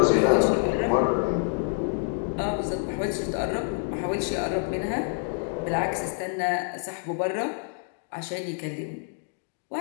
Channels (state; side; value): silent; right; 60 dB below the other